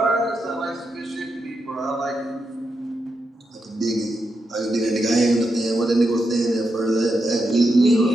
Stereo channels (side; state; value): both; normal; correlation 0.85